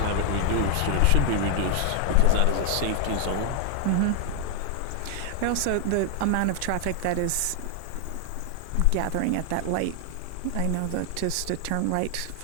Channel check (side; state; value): both; different; correlation 0.00